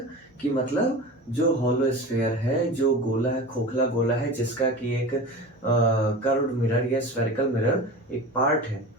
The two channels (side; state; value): both; normal; correlation 0.31